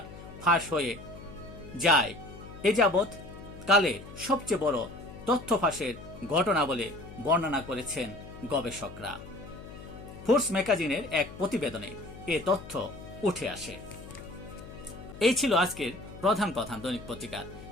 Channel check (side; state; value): left; noise; hum, 15 dB below the sound